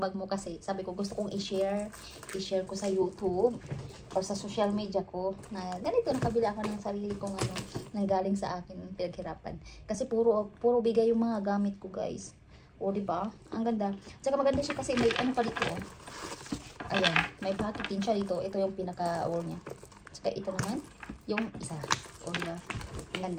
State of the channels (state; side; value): identical; both; correlation 1.00